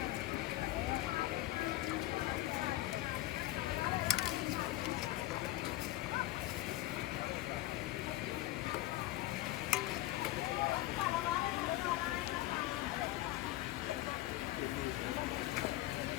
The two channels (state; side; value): quieter; right; 16.8 dB